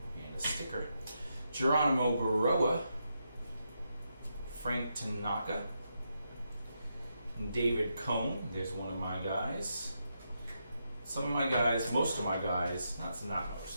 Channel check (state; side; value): inverted; both; correlation -0.83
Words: a sticker. Geronimo Baroa, Frank Tanaka, David Cohn. There's one of my guys. Some of my guys, most of my guys, not